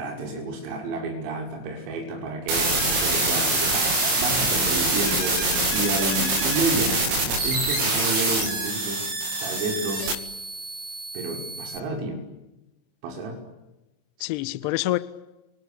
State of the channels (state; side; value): late; left; 25 ms